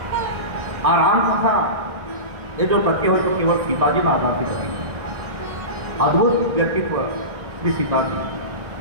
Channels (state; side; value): late; left; 1.7 ms